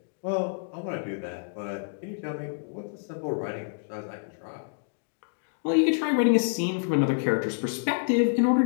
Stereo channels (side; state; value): right; silent; digital silence